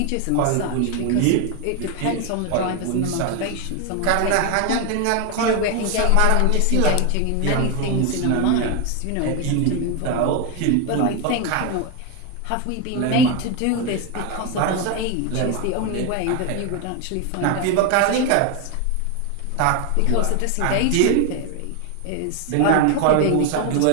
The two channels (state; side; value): different; both; correlation 0.01